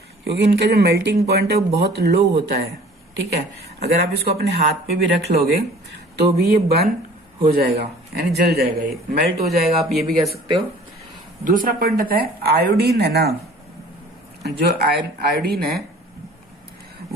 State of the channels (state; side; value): normal; both; correlation 0.49